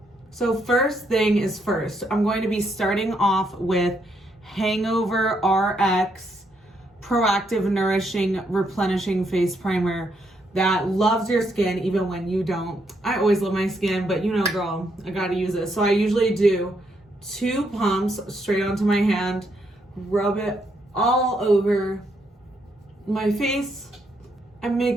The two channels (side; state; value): both; normal; correlation 0.76